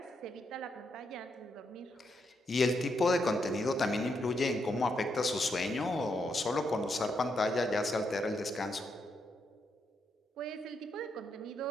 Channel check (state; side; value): normal; both; correlation 0.80